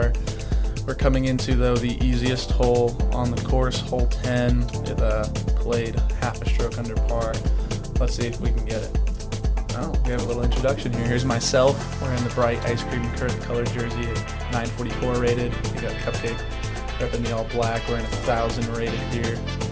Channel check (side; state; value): both; identical; correlation 1.00